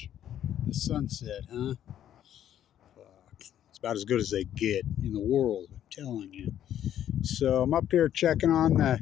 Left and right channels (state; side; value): quieter; right; 10.8 dB